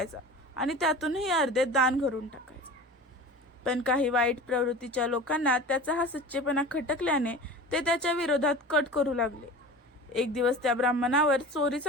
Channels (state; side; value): normal; both; correlation 0.36